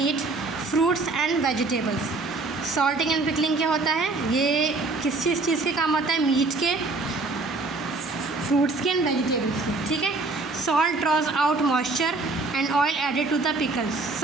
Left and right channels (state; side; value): quieter; left; 3.5 dB